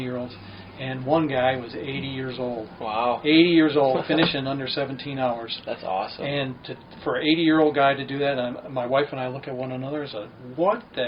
and one guy was 80 years old. Wow. 80 years old, finishing under 17 hours. That's awesome. And for an 80-year-old guy to do that, my wife and I look at one another and say, what the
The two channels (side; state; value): both; identical; correlation 1.00